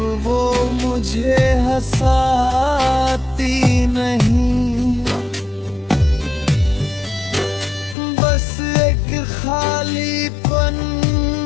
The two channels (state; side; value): drops out; right; at 8.0 s